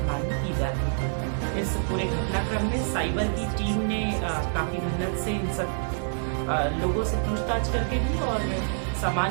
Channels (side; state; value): left; silent; digital silence